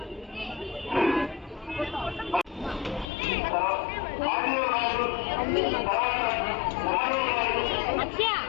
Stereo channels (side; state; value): right; drops out; at 3.1 s